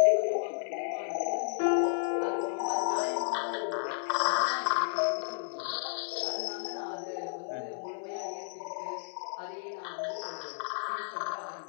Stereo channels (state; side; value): silent; right; digital silence